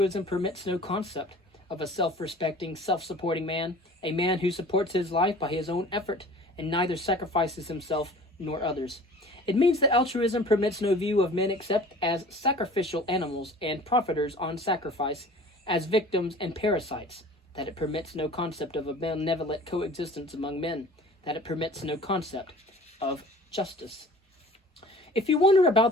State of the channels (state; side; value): normal; both; correlation 0.45